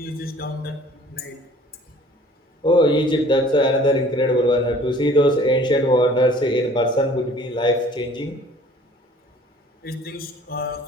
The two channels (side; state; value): both; normal; correlation 0.52